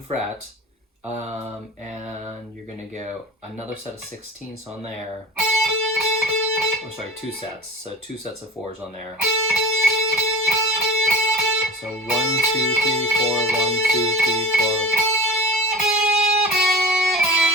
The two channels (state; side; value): normal; both; correlation 0.37